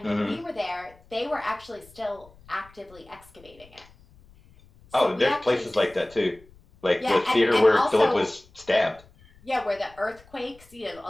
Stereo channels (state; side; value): noise; left; rumble, 26 dB below the sound